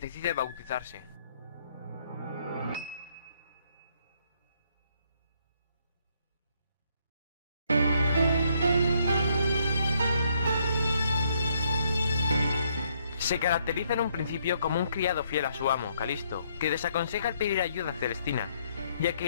bautizarse. Se caracteriza en un principio como un criado fiel a su amo, Calisto, que desaconseja el pedir ayuda a Celestina, ya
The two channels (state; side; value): inverted; both; correlation -0.71